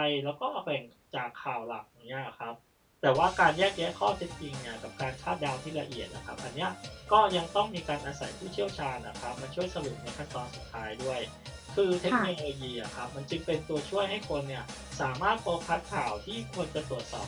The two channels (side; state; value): both; identical; correlation 1.00